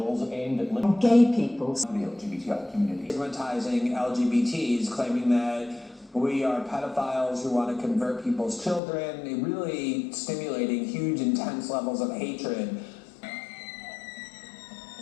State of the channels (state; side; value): drops out; right; at 8.8 s